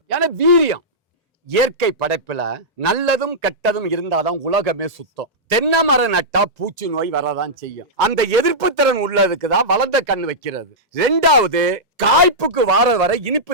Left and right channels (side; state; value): both; normal; correlation -0.11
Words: ஏன்னா வீரியம். இயற்கை படைப்புல நல்லதும் கெட்டதும் இருந்தாதான் உலகமே சுத்தம். தென்னை மரம் நட்டா பூச்சி நோய் வரதான் செய்யும். அந்த எதிர்ப்பு திறன் உள்ளதுக்கு தான் வளர்ந்த கண் வைக்கிறது. 2வது காய்ப்புக்கு வார வரை இனிப்பு